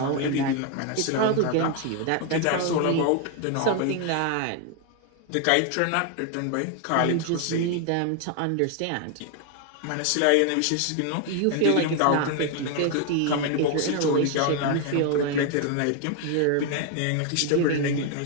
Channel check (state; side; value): different; both; correlation 0.01